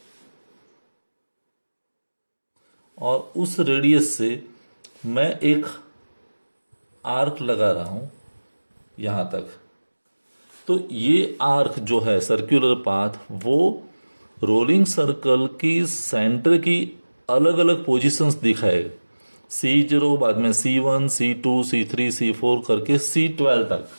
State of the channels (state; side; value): inverted; both; correlation -1.00